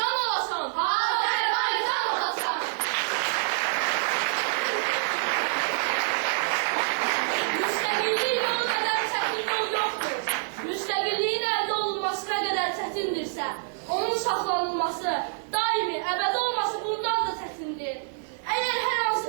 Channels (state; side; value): silent; left; 60 dB below the other